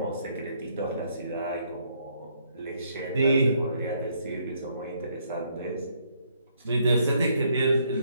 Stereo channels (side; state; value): both; inverted; correlation -0.70